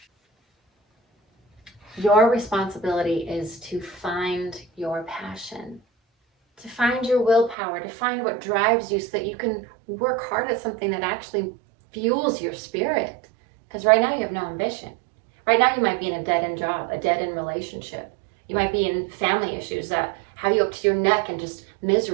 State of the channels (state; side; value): drops out; left; at 7.6 s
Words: Your responsibility is to find your passion, to find your willpower, to find what drives you so that you can work hard at something that actually fuels your spirit. Because right now you have no ambition. Right now you might be in a dead-end job, a dead-end relationship. You might be in family issues that have you up to your neck and just